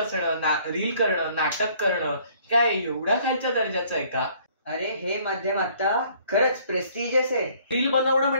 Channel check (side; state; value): both; inverted; correlation -0.59